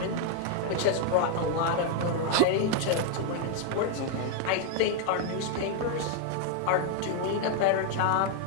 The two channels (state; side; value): different; both; correlation 0.00